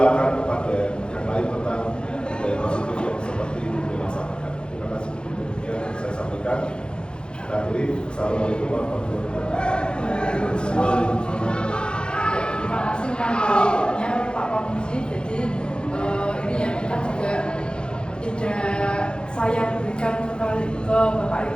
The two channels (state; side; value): late; right; 0.051 ms